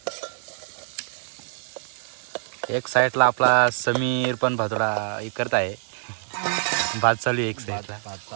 एक साईडला आपला समीर पण भातोडा हे करत आहे. भात चालू आहे एक साईडला. भात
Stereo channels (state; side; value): silent; left; 56 dB below the other